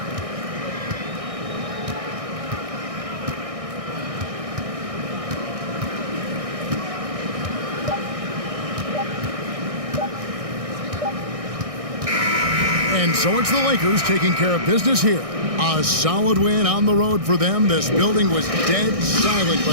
And so it's the Lakers taking care of business here. A solid win on the road for them. This building was dead silent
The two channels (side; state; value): left; late; 1.6 ms